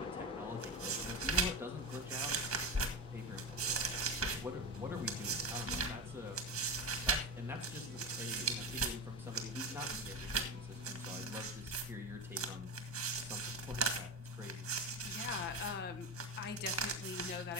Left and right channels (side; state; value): both; normal; correlation 0.22